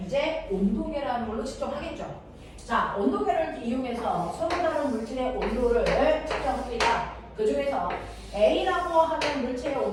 이제 온도계라는 걸로 측정하겠죠. 자, 온도계를 이용해서 서로 다른 물질의 온도를 측정합니다. 그 중에서 A라고 하는 물체의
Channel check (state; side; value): identical; both; correlation 1.00